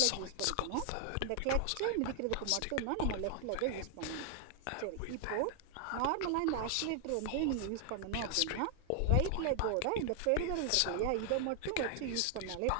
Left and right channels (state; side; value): different; both; correlation 0.00